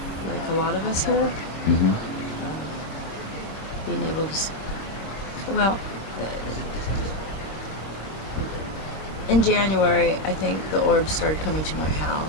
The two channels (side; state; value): right; late; 25 ms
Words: like a lot of us here. Mm-hmm. Being able to, in January, I think the orbs started coming to my